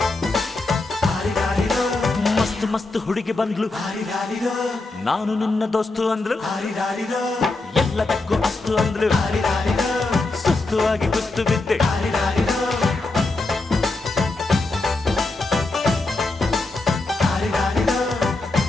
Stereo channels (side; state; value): right; quieter; 3.3 dB